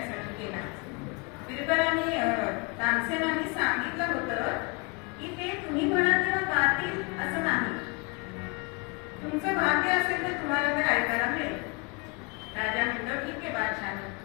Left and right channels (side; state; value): right; quieter; 31.4 dB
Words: गेला. बिरबलाने तानसेनांनी सांगितलं होतं की ते तुम्ही म्हणा तेव्हा गातील असं नाही, तुमचं भाग्य असेल तर तुम्हाला ते ऐकायला मिळेल. राजा म्हणतो ठीक आहे बादशाह.